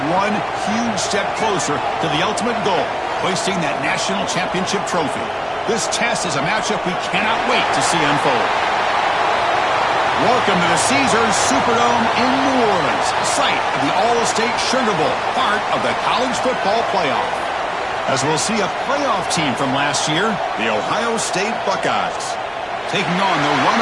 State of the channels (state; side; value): identical; both; correlation 1.00